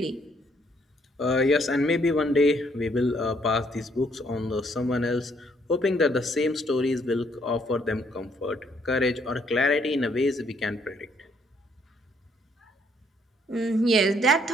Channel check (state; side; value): normal; both; correlation 0.68